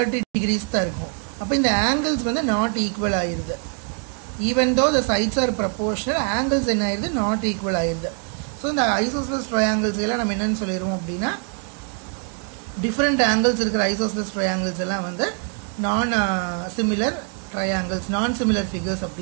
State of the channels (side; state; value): left; quieter; 40.0 dB